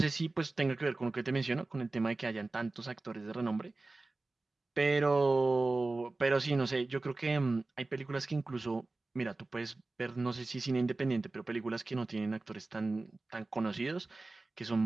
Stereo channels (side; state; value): left; quieter; 3.2 dB